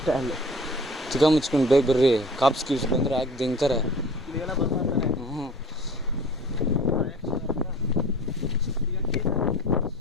ಅಲ್ಲಿ ಚಿಕ್ಕ ಮುಚ್ಕೊಂಡು ಬೇಗ ಬರ್ರಿ. ಕಾಪ್ಸ್ ಕೀಪ್ಸ್ ಬಂದ್ರೆ ಯಾಕೆ ದಿಂತಾರೆ.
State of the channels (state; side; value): normal; both; correlation 0.43